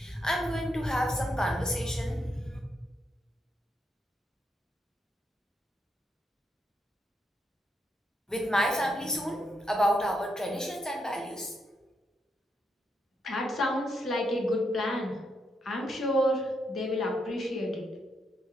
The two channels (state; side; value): normal; both; correlation 0.80